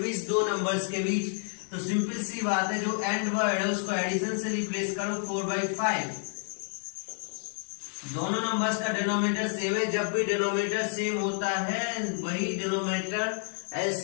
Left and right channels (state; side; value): silent; right; 58 dB below the other